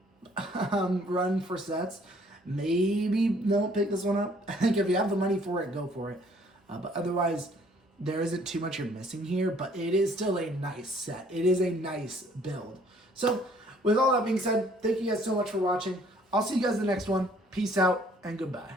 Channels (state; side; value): normal; both; correlation 0.60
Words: run for sets, maybe don't pick this one up. I think if you have the money for it, go for it. But otherwise, there isn't too much you're missing here, but it is still a nice set. It is a nice build. So, with all that being said, thank you guys so much for watching. I'll see you guys in the next one. Peace out and goodbye.